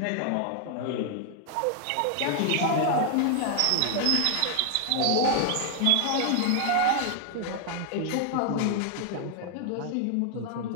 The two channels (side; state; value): both; different; correlation 0.00